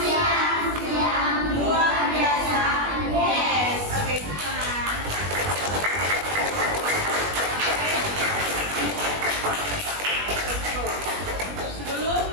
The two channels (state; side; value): late; left; 21 ms